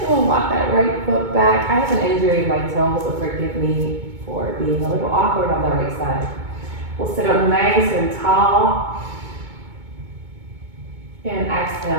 we'll walk that right foot back. I have an injury in my toe, so forgive me for being a little awkward on the right side. We'll sit up nice and tall. And exhale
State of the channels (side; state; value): left; late; 2.2 ms